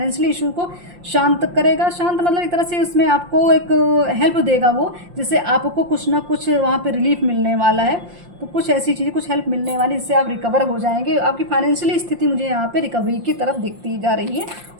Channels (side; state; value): left; late; 5.7 ms